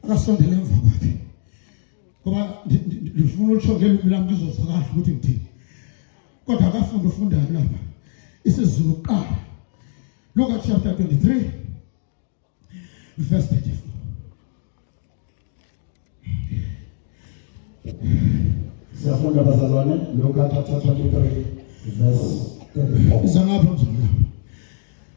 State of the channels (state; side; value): silent; right; digital silence